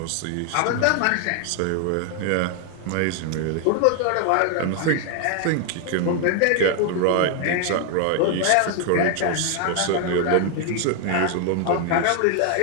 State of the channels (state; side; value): different; both; correlation 0.00